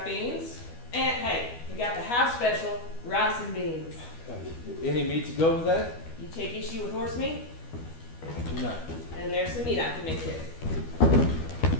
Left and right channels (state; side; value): late; right; 12 ms